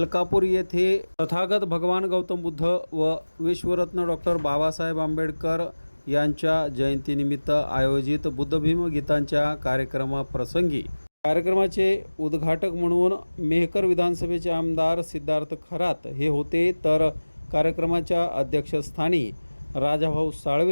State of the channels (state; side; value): inverted; both; correlation -1.00